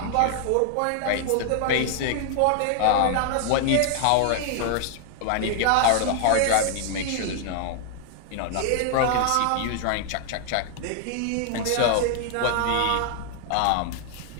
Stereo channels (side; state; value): both; different; correlation 0.00